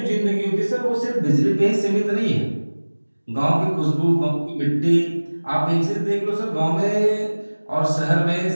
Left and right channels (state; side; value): inverted; both; correlation -1.00